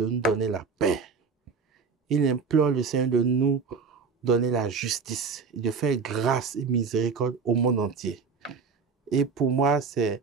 nous donner la paix. Il implore le Seigneur de nous donner la justice, de faire grâce et miséricorde au monde entier. Et pour moi, c'est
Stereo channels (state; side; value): quieter; left; 5.3 dB